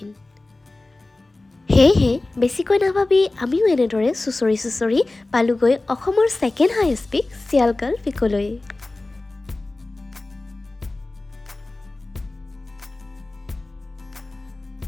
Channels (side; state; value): right; quieter; 3.0 dB